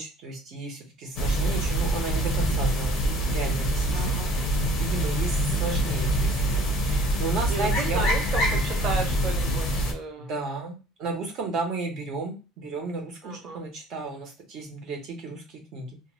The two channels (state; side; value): normal; both; correlation 0.53